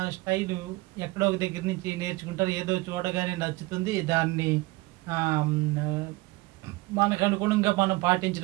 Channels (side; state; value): left; quieter; 21.9 dB